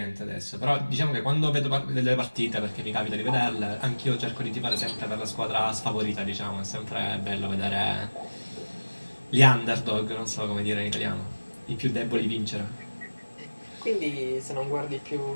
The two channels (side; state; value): both; inverted; correlation -1.00